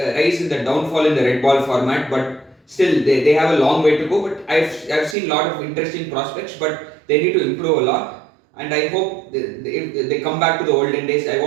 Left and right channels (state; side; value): drops out; left; at 5.2 s